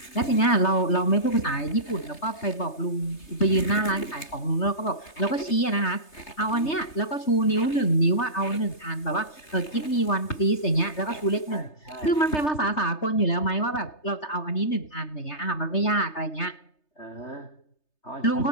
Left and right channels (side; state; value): right; late; 3.3 ms